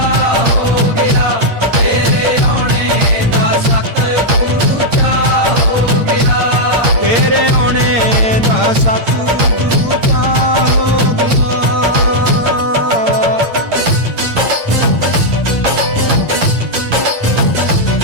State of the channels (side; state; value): left; late; 8.7 ms